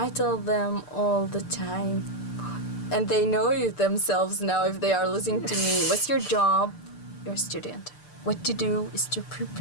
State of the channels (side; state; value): right; late; 6.8 ms